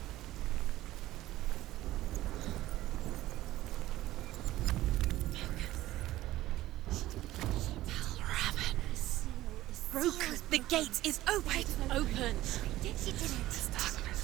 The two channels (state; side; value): quieter; left; 15.7 dB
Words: The gate is open. Open. This